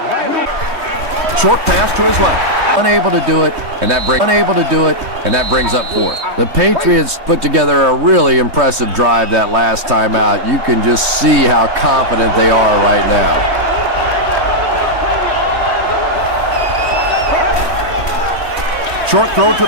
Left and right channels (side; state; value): left; late; 3.1 ms